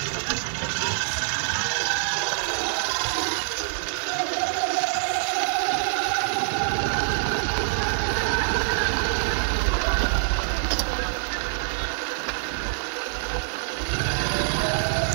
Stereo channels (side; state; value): left; silent; 61 dB below the other